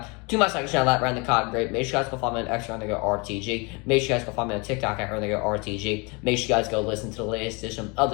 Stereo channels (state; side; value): quieter; right; 29.2 dB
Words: to my second channel at Run the Cotton Great. Make sure you guys go follow me on X at RTG. Make sure you guys go follow me on TikTok at RTG. Make sure you guys go listen to the latest edition of